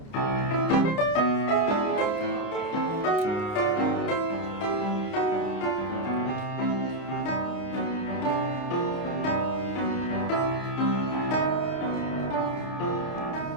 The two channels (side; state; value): right; late; 30 ms